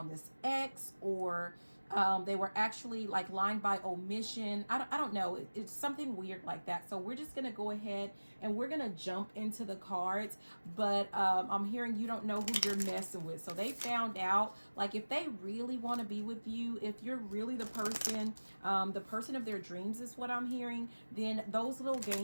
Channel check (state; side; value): inverted; both; correlation -1.00